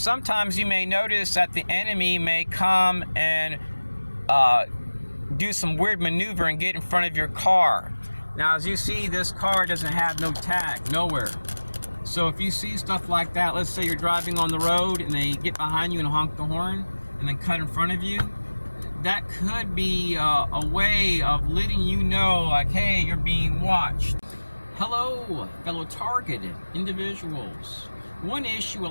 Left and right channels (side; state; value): both; inverted; correlation -1.00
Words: you may notice that the enemy may come and do some weird maneuver and get in front of your car. Now, as you see, this car doesn't have no tag, nowhere. So if you see stuff like that, let's say you're driving on the road and they get behind you and honk the horn and then cut in front of you, that could be a way of letting you know, like, hey, you're being watched. Hello, fellow targeted individuals. One issue a